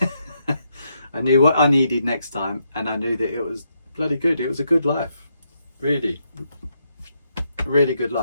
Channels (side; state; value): both; inverted; correlation -0.79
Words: I knew what I needed next time, and I knew that it was bloody good. It was a good life. Really good